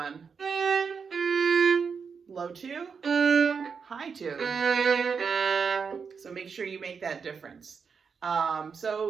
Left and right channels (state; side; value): quieter; left; 5.9 dB